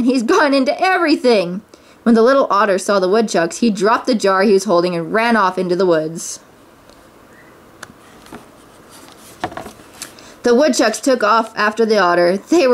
he's gone into everything!" When the little otter saw the woodchucks, he dropped the jar he was holding and ran off into the woods. The woodchucks took off after the otter. They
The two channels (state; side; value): identical; both; correlation 1.00